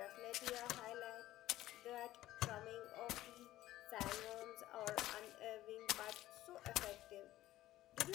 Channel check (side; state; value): right; quieter; 15.1 dB